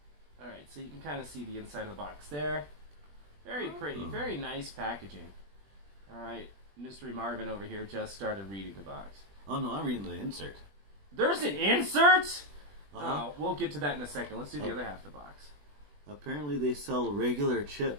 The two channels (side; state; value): left; late; 20 ms